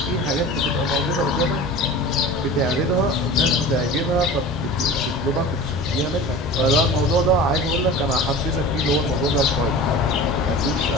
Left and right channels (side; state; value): both; normal; correlation 0.36